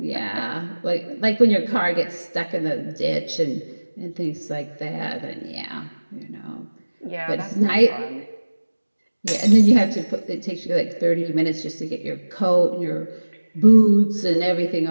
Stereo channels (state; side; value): inverted; both; correlation -1.00